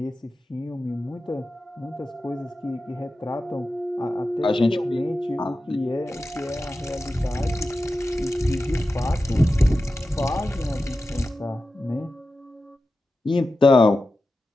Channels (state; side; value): normal; both; correlation 0.93